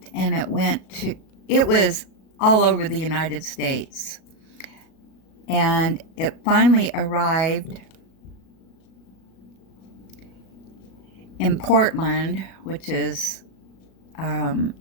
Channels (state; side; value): late; right; 37 ms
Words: and it was all over the United States. And it finally arrived in Portland, which is